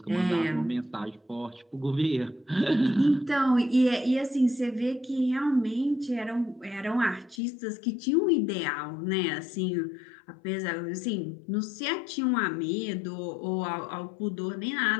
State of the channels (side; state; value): right; drops out; at 7.4 s